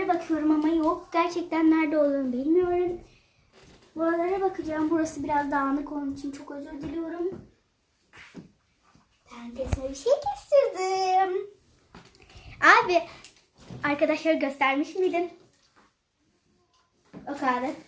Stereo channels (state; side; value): identical; both; correlation 1.00